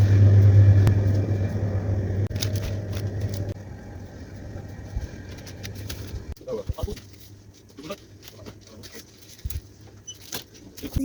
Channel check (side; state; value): both; identical; correlation 1.00